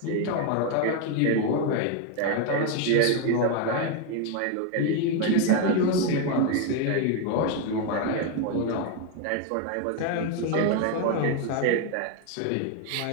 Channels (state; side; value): different; both; correlation 0.01